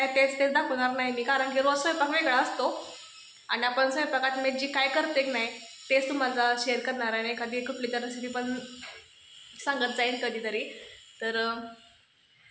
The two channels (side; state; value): both; identical; correlation 1.00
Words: तेच दाखवणार नाही मी. कारण की रोज स्वयंपाक वेगळा असतो आणि आपण स्वयंपाकात मी जी काय करते की नाही तेच तुम्हाला शेअर करणार आहे. एखादी कुठली तर रेसिपी पण सांगत जाईन कधीतरी. तर